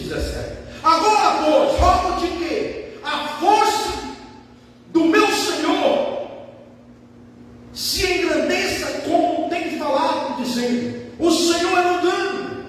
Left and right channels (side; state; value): both; identical; correlation 1.00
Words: 17. Agora, pois, rogo-te que a força do meu Senhor se engrandeça, como tem falado, dizendo: o Senhor é longânimo